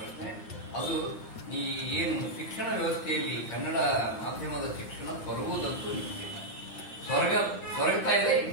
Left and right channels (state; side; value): late; right; 8.7 ms